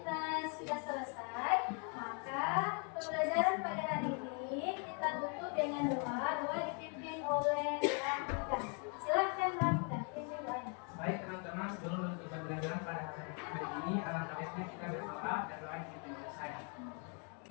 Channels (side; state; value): right; quieter; 38.8 dB